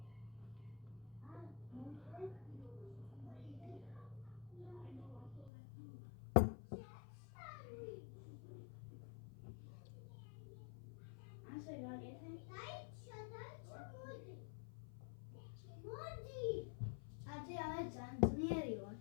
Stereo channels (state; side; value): drops out; right; at 5.5 s